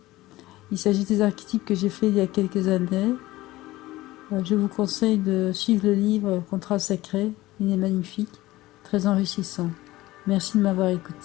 Il s'agit des archétypes que j'ai fait il y a quelques années. Je vous conseille de suivre le livre Contrat sacré, il est magnifique, très enrichissant. Merci de m'avoir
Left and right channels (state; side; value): quieter; right; 17.7 dB